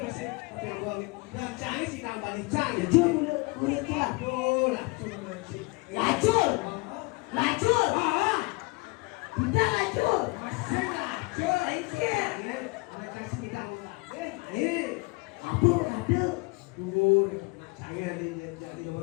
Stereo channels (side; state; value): right; quieter; 26.8 dB